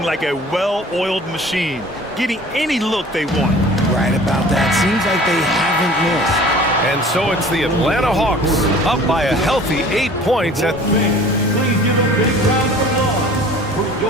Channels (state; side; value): normal; both; correlation 0.46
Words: like a well-oiled machine, getting any look they want. Right about that. Seems like they haven't missed. And so it's the Atlanta Hawks up by a healthy 8 points at... Please give a big round of applause for